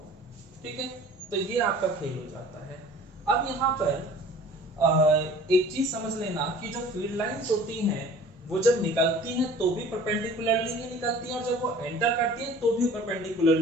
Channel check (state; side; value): normal; both; correlation 0.47